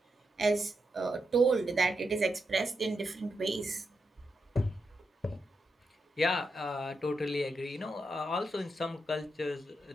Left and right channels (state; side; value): normal; both; correlation 0.85